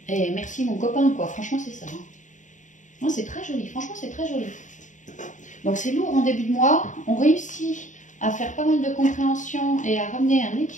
Et merci mon copain, quoi, franchement c'est ça. Hein. Non, c'est très joli, franchement c'est très joli. Donc c'est lourd en début de mois, on réussit à faire pas mal de compréhension et à ramener un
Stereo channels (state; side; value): late; right; 0.36 ms